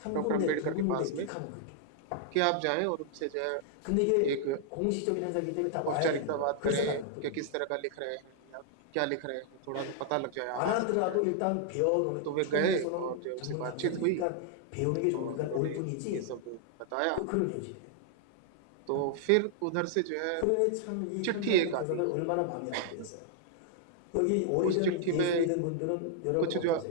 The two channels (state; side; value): different; both; correlation -0.01